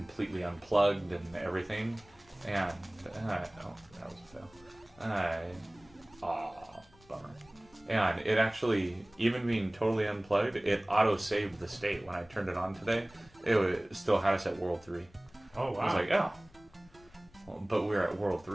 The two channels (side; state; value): left; noise; rumble, 27 dB below the sound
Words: unplugged and everything, and oh, that was a fail. Bummer. And it actually, even being totally unplugged, it auto-saved the state when I turned it on today. It still had us at World 3. Oh wow! I was like, oh, well, but we were at World